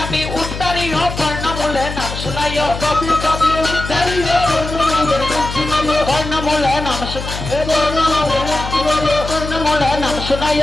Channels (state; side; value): noise; left; hum, 7 dB below the sound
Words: উত্তরীয় কর্ণমূলে নাম শুনাইও তাপি তাপি উত্তরীয় কর্ণমূলে নাম শুনাইও কর্ণমূলে নাম